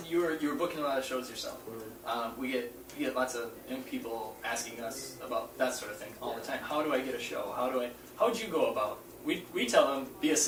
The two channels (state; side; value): identical; both; correlation 1.00